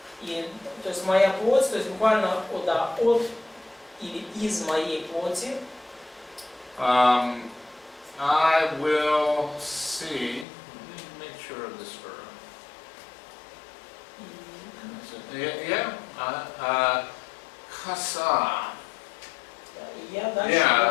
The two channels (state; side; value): drops out; right; at 10.5 s